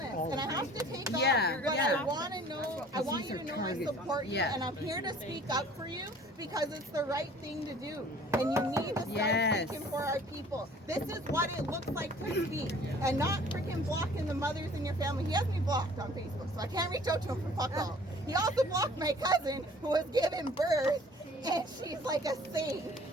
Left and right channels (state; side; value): normal; both; correlation 0.51